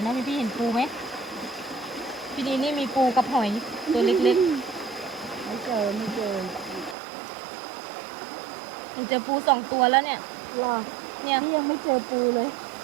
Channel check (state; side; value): drops out; left; at 7.0 s